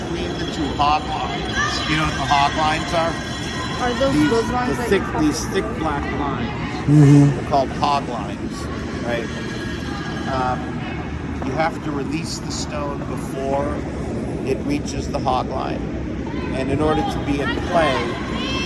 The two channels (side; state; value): both; identical; correlation 1.00